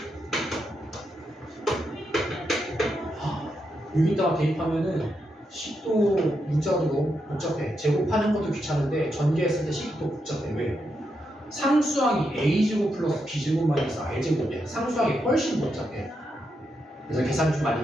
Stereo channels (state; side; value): normal; both; correlation 0.83